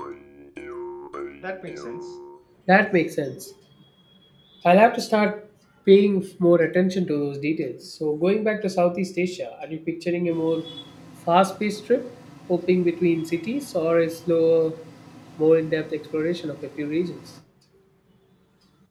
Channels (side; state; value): both; identical; correlation 1.00